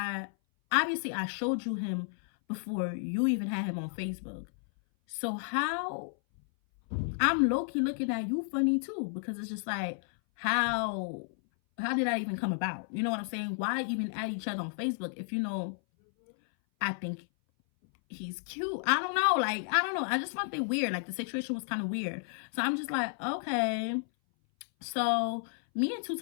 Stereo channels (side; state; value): right; silent; 56 dB below the other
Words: obviously I showed you him before you even had him on Facebook. So how, I'm low-key looking at you funny too, because it's just like, how did that even come about? You know what I'm saying? Why even add each other on Facebook if you know I think he's cute? I don't know. Like, I don't know. I just found it weird. Like, the situation was kind of weird. So I'm just like, okay. So me and